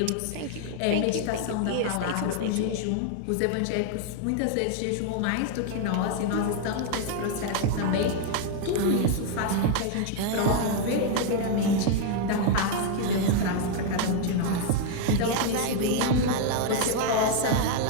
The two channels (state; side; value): different; both; correlation 0.00